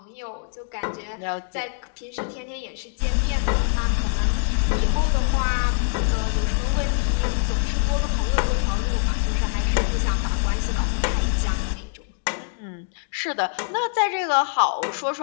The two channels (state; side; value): silent; right; digital silence